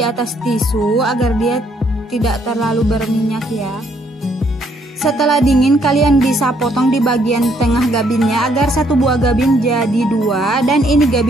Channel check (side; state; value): both; normal; correlation 0.69